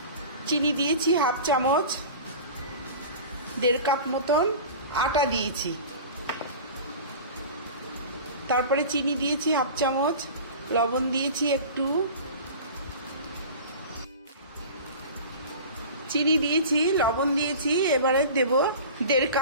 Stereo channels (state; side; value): inverted; both; correlation -0.36